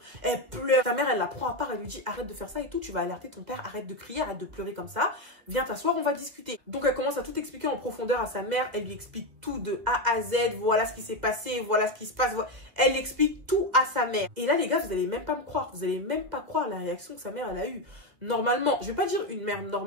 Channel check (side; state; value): left; late; 2.3 ms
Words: Elle pleure. Sa mère, elle la prend à part. Elle lui dit, arrête de faire ça et tout. Tu vas alerter ton père. Arrête de crier. Arrête de pleurer comme ça. Viens t'asseoir, on va discuter. Donc, elle commence à tout expliquer en profondeur à sa mère. Elle lui explique tout de A à Z. Voilà ce qui s'est passé. Voilà ce qui se passe. Elle explique tout à sa mère. Et là, les gars, vous allez même pas me croire. Vous allez même pas croire la réaction que sa mère, elle a eue. Normalement, je vais pas dire une mère